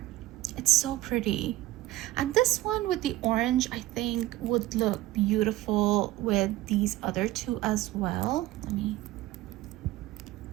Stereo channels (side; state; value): left; quieter; 16.4 dB